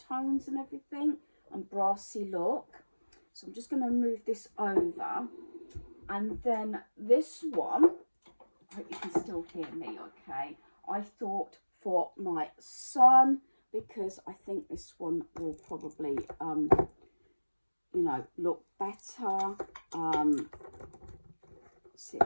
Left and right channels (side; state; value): both; inverted; correlation -1.00